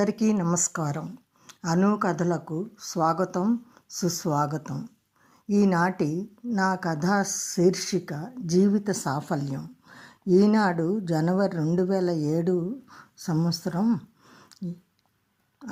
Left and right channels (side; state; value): both; identical; correlation 1.00